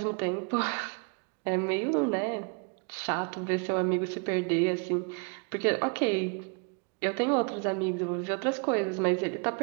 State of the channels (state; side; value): quieter; left; 36.4 dB